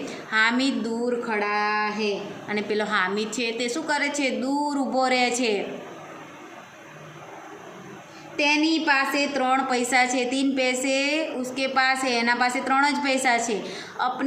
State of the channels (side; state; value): both; identical; correlation 1.00